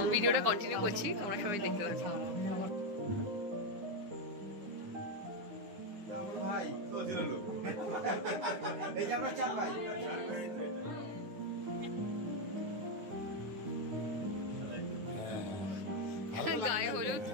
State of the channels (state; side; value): late; left; 9.8 ms